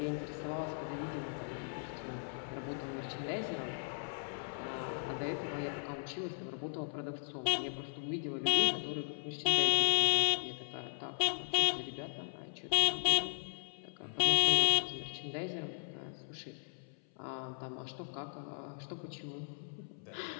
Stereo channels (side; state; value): right; silent; 53 dB below the other